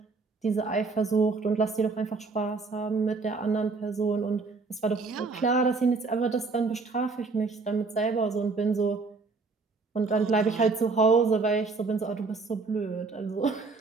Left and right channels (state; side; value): quieter; left; 4.1 dB